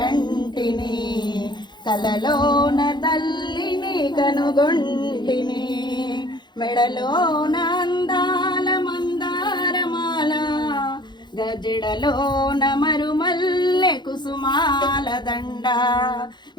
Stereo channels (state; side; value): late; right; 0.21 ms